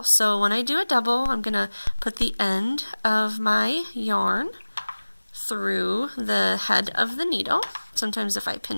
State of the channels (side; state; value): both; inverted; correlation -1.00